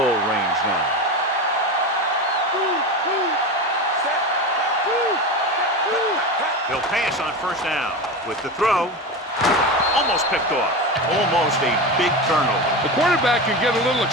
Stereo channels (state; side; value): normal; both; correlation 0.23